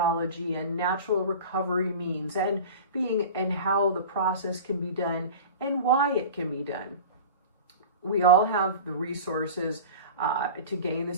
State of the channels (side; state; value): both; inverted; correlation -0.35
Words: and natural recovery means, and how the process can be done and why it can be done. We all have the resources to gain